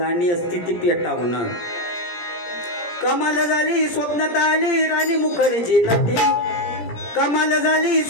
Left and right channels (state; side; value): late; right; 17 ms